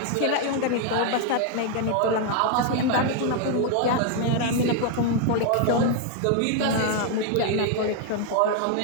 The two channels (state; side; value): different; both; correlation 0.00